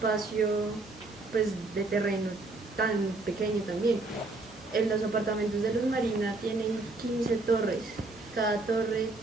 pues de terreno tan pequeño también. En los apartamentos de Luz Marina tienen 15 torres, cada torre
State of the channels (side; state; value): left; quieter; 3.2 dB